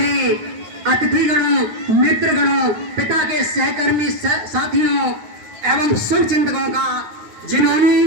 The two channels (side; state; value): left; late; 9.1 ms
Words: अतिथिगणों, मित्रगणों, पिता के सहकर्मी साथियों एवं शुभ चिंतकों का,